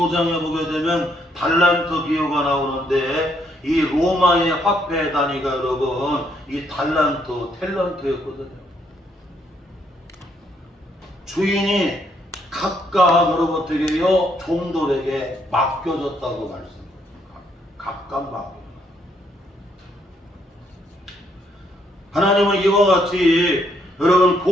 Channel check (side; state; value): both; normal; correlation 0.72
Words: 보게 되면 달란트 비유가 나오는데 이 로마의 화폐 단위가 여러분 이 탤런트였거든요. 주인이 각각 여러분 어떻게요? 종들에게 맡겨졌다고 말씀합니다. 각각 맡겨졌다. 하나님은 이와 같이 여러분